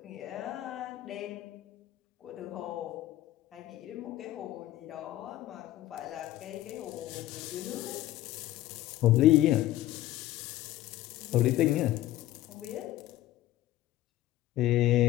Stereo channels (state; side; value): quieter; right; 14.9 dB